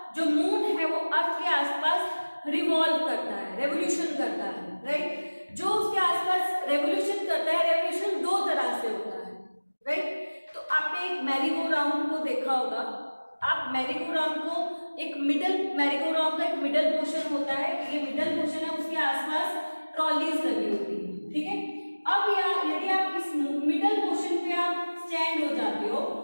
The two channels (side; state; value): both; inverted; correlation -1.00